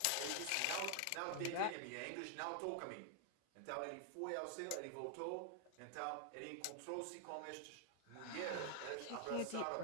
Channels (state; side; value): different; both; correlation 0.00